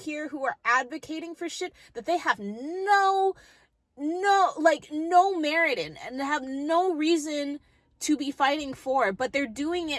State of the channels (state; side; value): identical; both; correlation 1.00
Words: who are advocating for shit that they have no merit in, and have no reason to be fighting for, but they're doing